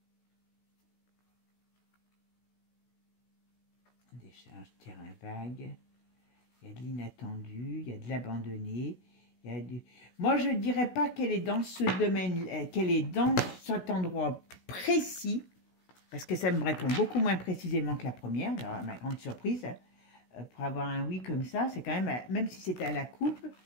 Décharge, terrain vague. Il y a de l'inattendu, il y a de l'abandonné. Moi, je ne dirais pas qu'elle est dans ce domaine, qu'elle est dans cet endroit précis, parce que ça me répond beaucoup moins précisément que la première, alors, ma grande surprise, pour avoir un oui comme ça, c'est quand même si c'était à la coupe,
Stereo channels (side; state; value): right; late; 16 ms